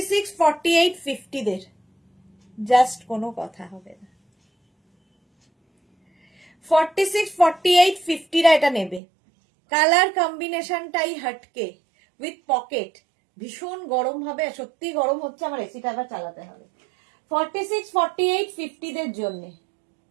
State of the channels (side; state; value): left; drops out; at 9.0 s